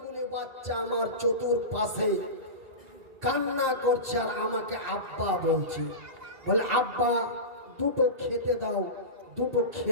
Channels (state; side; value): late; left; 1.9 ms